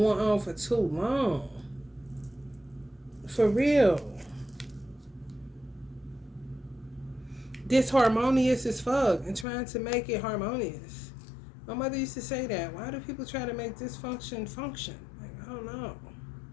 on for too long. For real. Disharmonious as fuck and trying to make it harmonious. My mother used to say that. Why do people try to make dysfunction function? Like, I don't know.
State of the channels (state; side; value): drops out; right; at 9.5 s